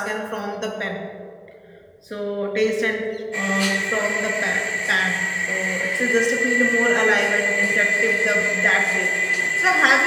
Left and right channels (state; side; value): identical; both; correlation 1.00